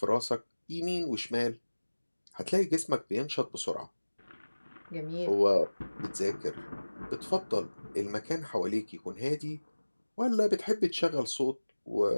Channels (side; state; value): both; inverted; correlation -1.00